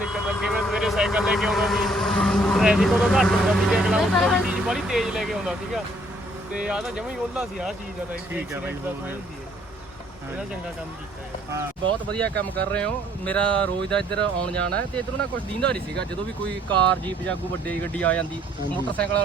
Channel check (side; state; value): both; normal; correlation 0.64